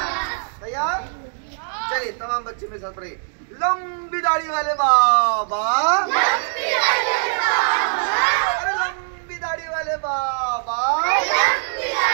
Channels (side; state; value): left; silent; digital silence